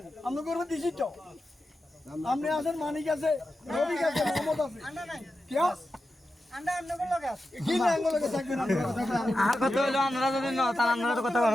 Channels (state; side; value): normal; both; correlation 0.91